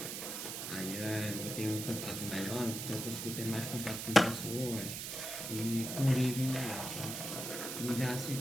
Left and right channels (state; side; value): noise; right; hiss, 5 dB below the sound